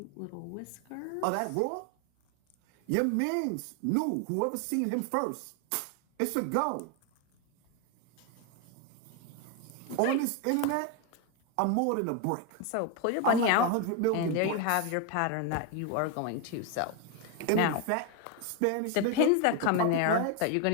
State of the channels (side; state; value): both; different; correlation 0.01